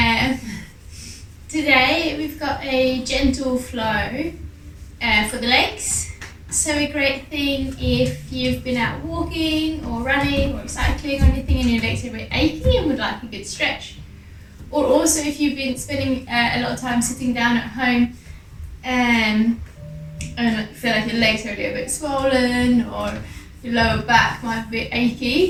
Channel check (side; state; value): both; identical; correlation 1.00